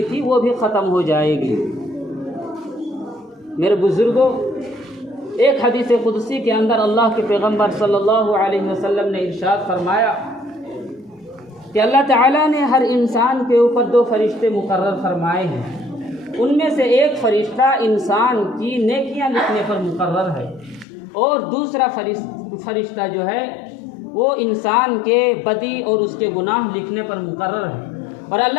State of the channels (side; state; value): right; drops out; at 20.9 s